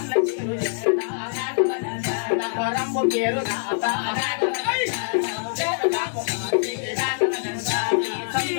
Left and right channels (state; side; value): silent; right; digital silence